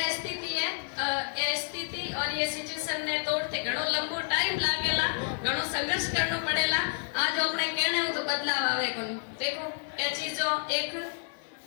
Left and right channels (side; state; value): right; silent; digital silence